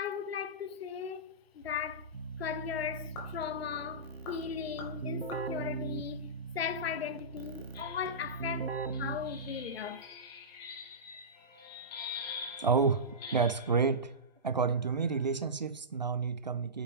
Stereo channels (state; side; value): normal; both; correlation -0.19